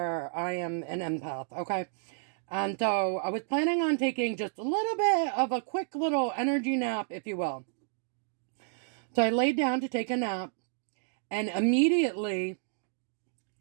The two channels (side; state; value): left; silent; digital silence